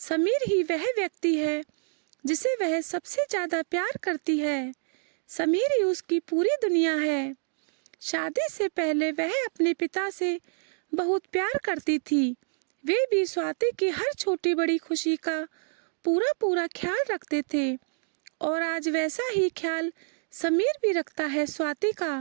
ही वह व्यक्ति है जिसे वह सबसे ज्यादा प्यार करती है। समीर ही उसकी पूरी दुनिया है। शादी से पहले वह अपने पिता से बहुत प्यार करती थी। वे भी स्वाति की हर छोटी बड़ी खुशी का पूरा पूरा ख्याल रखते थे, और आज वैसा ही ख्याल समीर भी रखता है स्वाति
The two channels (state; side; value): silent; left; digital silence